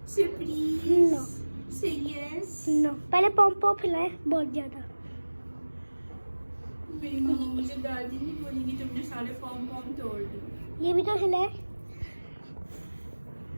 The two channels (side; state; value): both; inverted; correlation -1.00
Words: से प्लीज नो। से यस। नो। पहले पॉम पॉम खिलाए बहुत ज्यादा। मेरी मामा मुझे दादी नहीं बोलेगी तुमने सारे पॉम पॉम तोड़ दिए। ये भी तो खिलाए।